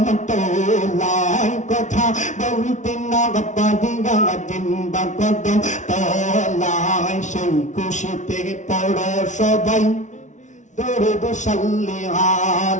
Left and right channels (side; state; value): right; late; 0.36 ms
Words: তোলাই, কথা বলতে না পারিয়া দিবা কদম তোলাই। সেই খুশিতে পড়ো সবাই দরুদ সাল্লি